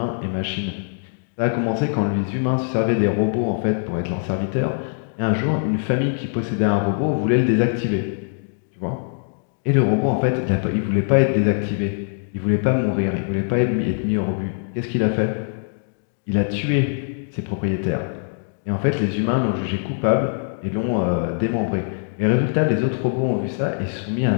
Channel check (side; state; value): right; silent; digital silence